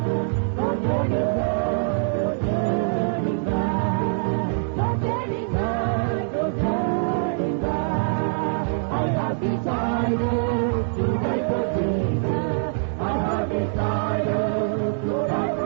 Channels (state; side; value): silent; left; digital silence